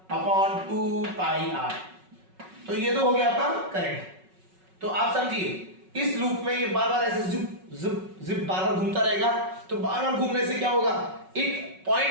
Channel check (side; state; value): left; late; 5.4 ms